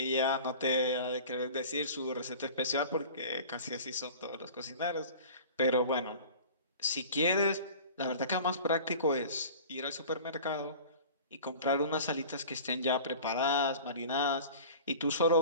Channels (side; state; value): both; inverted; correlation -0.40